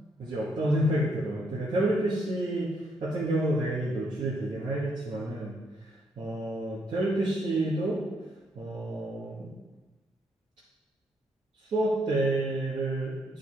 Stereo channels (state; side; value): normal; both; correlation 0.73